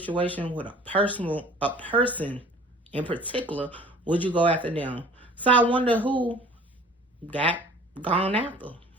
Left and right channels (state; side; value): normal; both; correlation 0.48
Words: with a person in particular, would you go after them? So I wonder who got gone after.